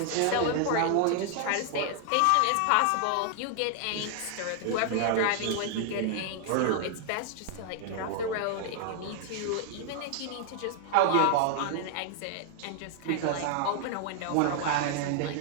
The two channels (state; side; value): different; both; correlation 0.00